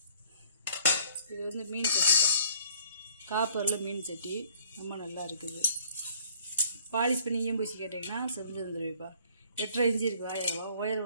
இது வந்து மீன் சட்டிப்பா, காப்பரில் மீன் சட்டி ரொம்ப நல்லா இருக்குது. பாலிஷ் பண்ணி பூசி கேட்டிங்கன்னா செஞ்சு வந்துடுவேப்பா. 8.5 இன்ச்சு இருக்குது வாயகம்.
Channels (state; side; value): inverted; both; correlation -0.57